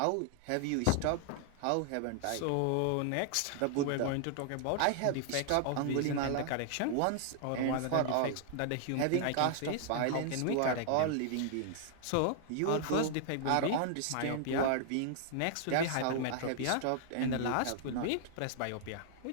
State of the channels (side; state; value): both; different; correlation 0.00